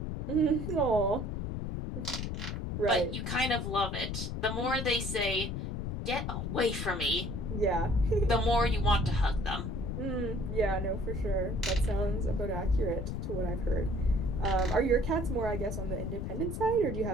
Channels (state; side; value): noise; left; rumble, 4 dB below the sound